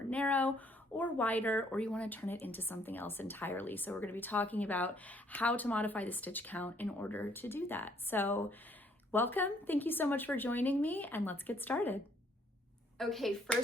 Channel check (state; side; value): normal; both; correlation 0.65